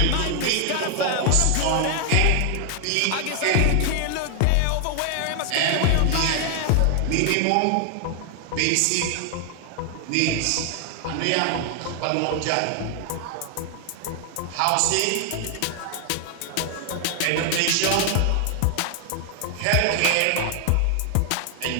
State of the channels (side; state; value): both; different; correlation 0.00